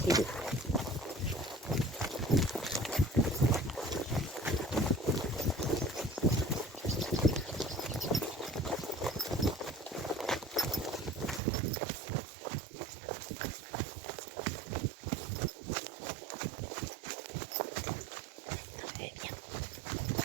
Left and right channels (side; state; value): left; drops out; at 11.4 s